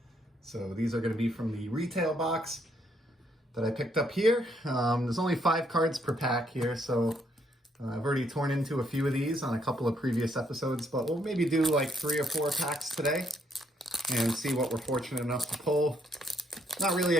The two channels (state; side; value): normal; both; correlation 0.72